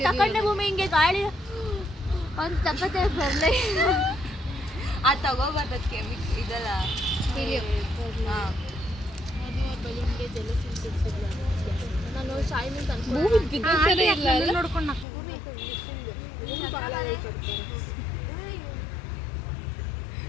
ತಕೊಂಡೆ ಭೂಮಿ ಹಿಂಗೆ ಗಾಳಿ ಒಂದು ತಪ್ಪತ್ತೆ ಬರಲೇ ಆ ತಗೋಬಾರ್ದಕ್ಕೆ ಇದಲ್ಲ ಹಾಂ ನಾನು ಶಾಯಿನಿಂದ ಭೂಮಿ ಬಿದ್ದಿರ್ತಾನೆ ಇಲ್ಲ ಅಲ್ಲ? ನೋಡ್ಕೊಂಡು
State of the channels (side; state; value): right; drops out; at 15.1 s